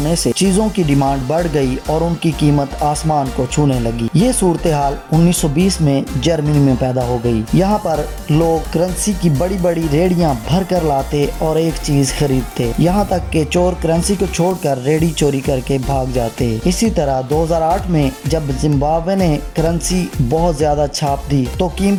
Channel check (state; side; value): identical; both; correlation 1.00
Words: سے چیزوں کی ڈیمانڈ بڑھ گئی اور ان کی قیمت آسمان کو چھونے لگی۔ یہ صورتحال 1920 میں جرمنی میں پیدا ہو گئی۔ یہاں پر لوگ کرنسی کی بڑی بڑی ریڑیاں بھر کر لاتے اور ایک چیز خریدتے، یہاں تک کہ چور کرنسی کو چھوڑ کر ریڑی چوری کر کے بھاگ جاتے۔ اسی طرح 2008 میں جب زمبابوے نے کرنسی بہت زیادہ چھاپ دی تو